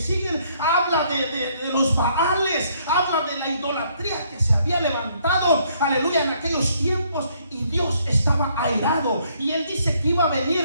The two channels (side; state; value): both; inverted; correlation -0.67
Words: habla de los Baales, habla de la idolatría que se había levantado, aleluya, en aquellos tiempos, y Dios estaba airado. Y Él dice que iba a